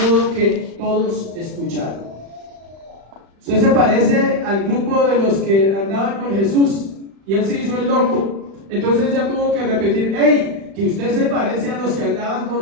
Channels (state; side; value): late; left; 36 ms